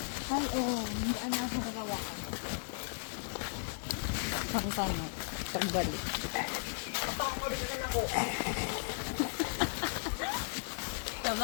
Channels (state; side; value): silent; right; digital silence